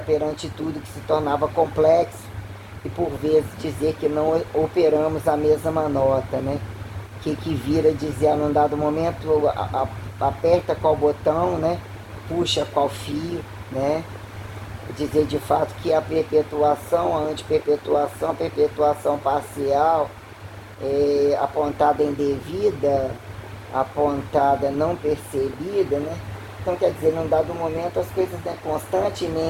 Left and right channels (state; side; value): identical; both; correlation 1.00